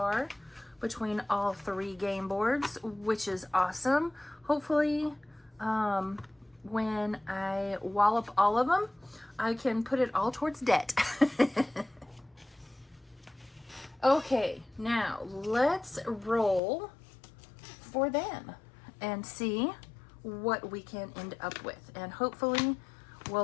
between all 3 game boards, which is awesome. Hopefully, when I wallop all of them, I can put it all towards debt. Okay, now let's roll for them and see what we can end up with. And hopefully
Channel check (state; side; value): drops out; right; at 16.6 s